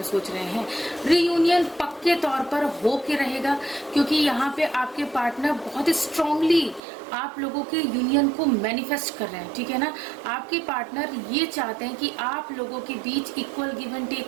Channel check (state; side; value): drops out; left; at 6.8 s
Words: सोच रहे हैं। रियूनियन पक्के तौर पर हो के रहेगा, क्योंकि यहाँ पे आपके पार्टनर बहुत ही स्ट्रांगली आप लोगों के यूनियन को मैनिफेस्ट कर रहे हैं, ठीक है ना। आपके पार्टनर ये चाहते हैं कि आप लोगों के बीच इक्वल गिव एंड